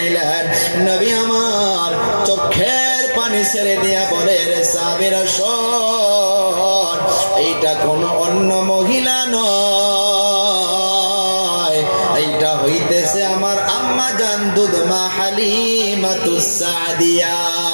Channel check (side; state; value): both; inverted; correlation -1.00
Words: নবী আমার চোখের পানি ছেড়ে দিয়া বলে, রে সাহাবীরা শোন, এইটা কোনো অন্য মহিলা নয়, এইটা হইতেছে আমার আম্মা জান দুধমা হালিমাতুস সাদিয়া।